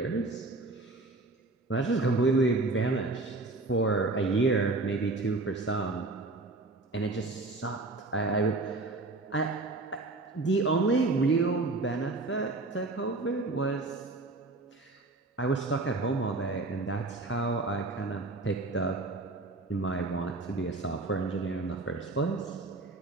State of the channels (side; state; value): left; quieter; 3.2 dB